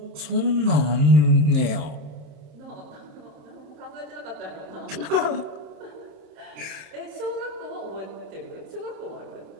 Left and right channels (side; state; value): left; late; 27 ms